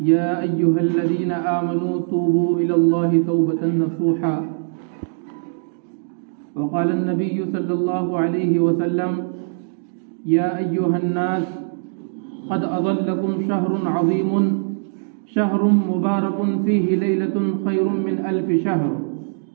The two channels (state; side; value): silent; left; digital silence